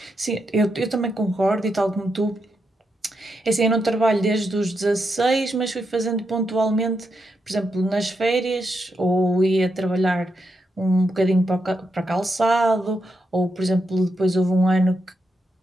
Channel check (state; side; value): normal; both; correlation 0.84